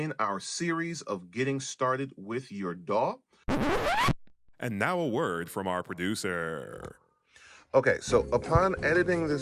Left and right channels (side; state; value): both; identical; correlation 1.00